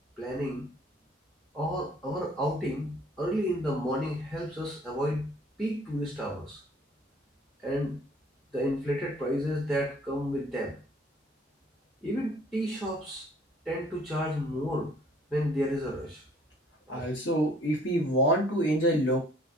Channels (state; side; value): normal; both; correlation 0.57